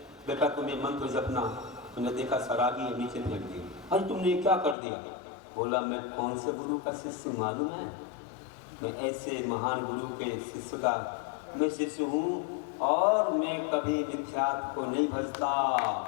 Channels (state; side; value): drops out; right; at 4.8 s